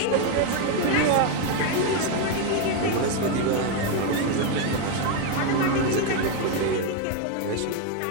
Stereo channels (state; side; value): different; both; correlation 0.02